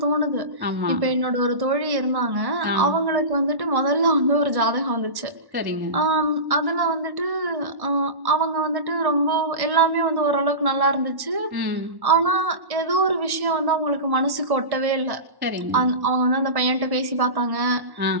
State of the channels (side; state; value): left; late; 1.1 ms